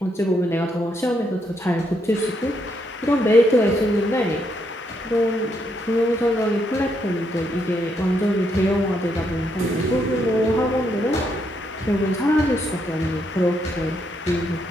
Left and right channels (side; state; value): both; normal; correlation 0.76